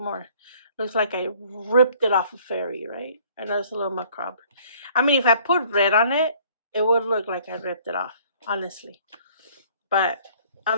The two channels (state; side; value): inverted; both; correlation -0.57